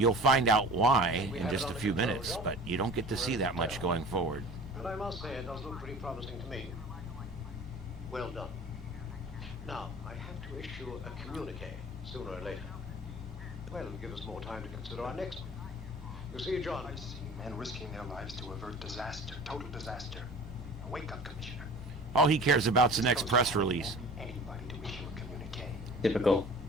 find out why in just a few minutes, but you don't get to see that much going forward. And I must say, it does look pretty promising to me. Well done. Now, I have to issue a communique sooner or later. Well, it'll give us more time to consider our next one. You see, John, I've seen men risking their lives to avert disaster, total disaster. Now, wake up, Commissioner. All he cares about's the next press release. Anybody to issue a communique. Typical.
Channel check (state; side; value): normal; both; correlation 0.41